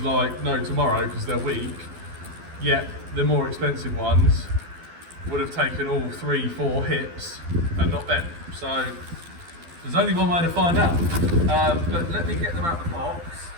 like no tomorrow, because they're weak, yet the more expensive ones would have taken all 3-4 hits and not bent. So there's only one way to find out. But let me get them out of the box.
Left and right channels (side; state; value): left; late; 12 ms